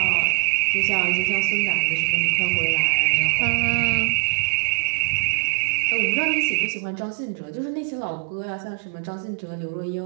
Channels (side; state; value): left; silent; digital silence